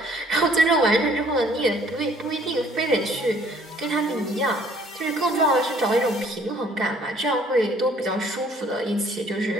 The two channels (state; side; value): normal; both; correlation 0.59